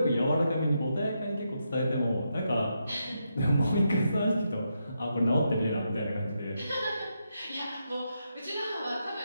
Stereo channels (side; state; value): both; inverted; correlation -0.83